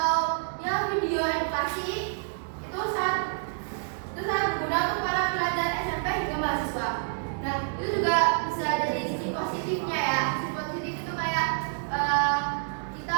ya video edukasi. Itu sangat berguna untuk para pelajar SMP hingga mahasiswa. Nah, itu juga bisa jadi sisi positifnya ya. Sisi positif itu kayak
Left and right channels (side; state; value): left; silent; digital silence